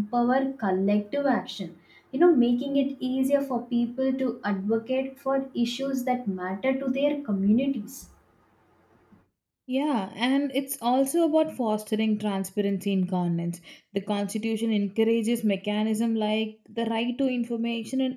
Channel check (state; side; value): identical; both; correlation 1.00